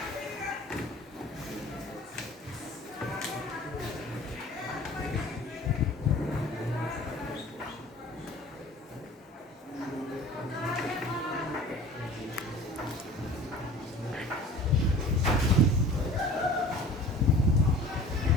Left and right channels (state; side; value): normal; both; correlation 0.44